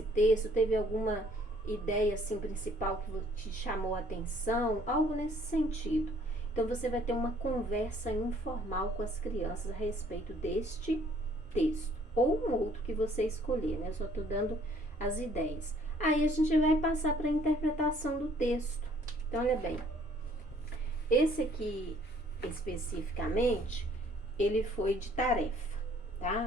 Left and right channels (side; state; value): both; normal; correlation 0.60